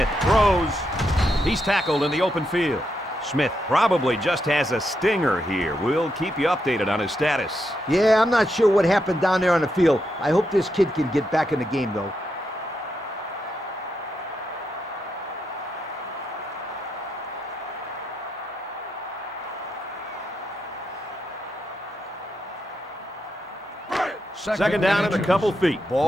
throws. He's tackled in the open field. Smith probably just has a stinger here. We'll keep you updated on his status. Yeah, I'm not sure what happened down there on the field. I hope this kid can get back in the game, though. Second down and a couple feet.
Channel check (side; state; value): both; normal; correlation 0.82